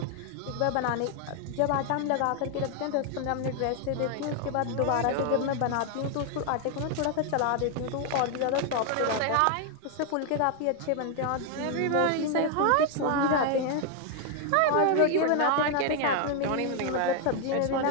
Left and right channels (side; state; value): both; different; correlation 0.00